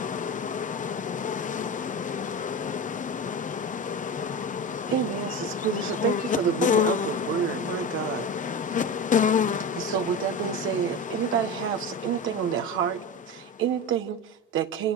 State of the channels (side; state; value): both; normal; correlation 0.25